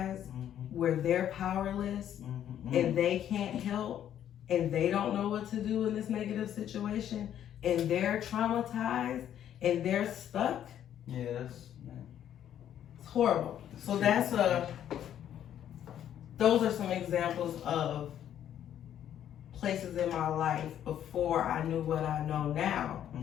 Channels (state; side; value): quieter; right; 10.4 dB